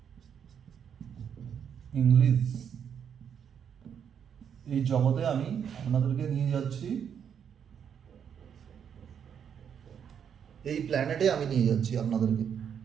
English, এই জগতে আমি আপনাদেরকে নিয়ে যাচ্ছি, এই প্ল্যানেটে আমি নিয়ে যাচ্ছি আপনাদেরকে,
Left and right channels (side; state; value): left; quieter; 8.0 dB